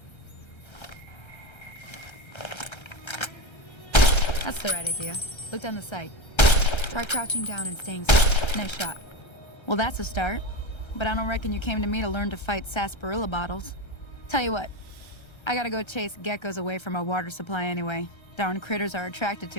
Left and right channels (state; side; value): late; right; 1.3 ms